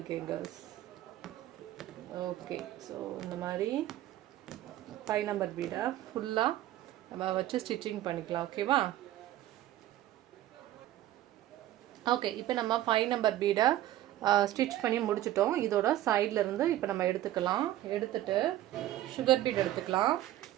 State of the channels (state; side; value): quieter; left; 13.9 dB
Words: கேர்ள்ஸ். ஓகே, ஸோ இந்த மாதிரி 5 நம்பர் பீடை ஃபுல்லாக நம்ம வச்சு ஸ்டிச்சிங் பண்ணிக்கலாம். ஓகேவா? ஓகே, இப்போ நம்ம 5 நம்பர் பீடை ஸ்டிச் பண்ணி முடிச்சிட்டோம். இதோட சைடில் இருந்து இப்போ நம்ம எடுத்துக்கலாம். எடுத்துட்டு சுகர் பீட் எடுத்துக்கலாம்.